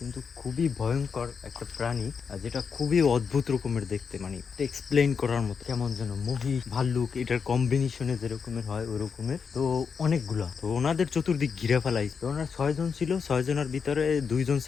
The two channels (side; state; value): right; quieter; 6.0 dB